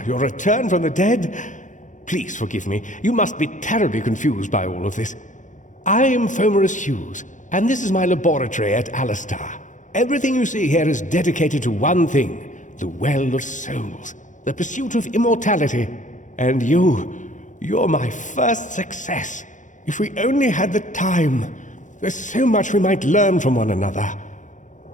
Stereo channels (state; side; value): late; right; 0.36 ms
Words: your return from the dead. Please forgive me. You must be terribly confused by all of this. I am Fomerus Hughes, and this is my laboratory at Alistar. Everything you see here is dedicated to one thing, the Well of Souls, the pursuit of immortality. And you're my first success. If we only had the time, there's so much we might learn from one another.